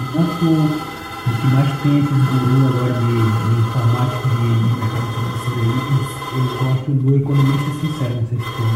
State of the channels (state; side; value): identical; both; correlation 1.00